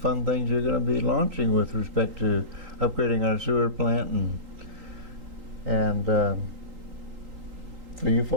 things you're going to be launching with respect to upgrading our sewer plant. And for you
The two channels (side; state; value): left; late; 3.8 ms